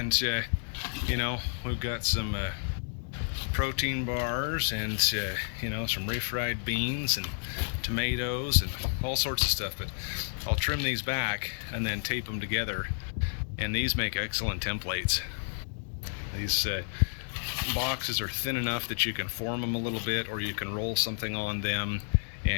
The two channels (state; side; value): silent; right; digital silence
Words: you know, we've got some protein bars and you know, some refried beans and tomatoes and all sorts of stuff, but I'll trim these back and then tape them together, and these make excellent templates. These boxes are thin enough that you can form them a little bit, or you can roll something on them